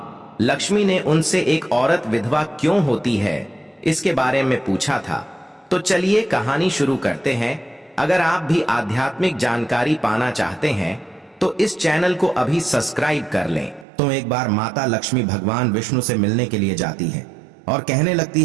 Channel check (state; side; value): drops out; left; at 13.9 s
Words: लक्ष्मी ने उनसे एक औरत विधवा क्यों होती है इसके बारे में पूछा था। तो चलिए कहानी शुरू करते हैं। अगर आप भी आध्यात्मिक जानकारी पाना चाहते हैं तो इस चैनल को अभी सब्सक्राइब कर लें। तो एक बार माता लक्ष्मी भगवान विष्णु से मिलने के लिए जाती है और कहने लगती